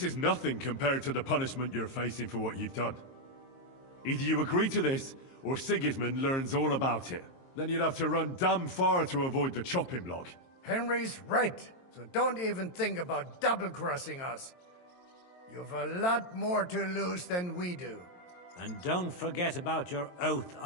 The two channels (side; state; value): right; late; 22 ms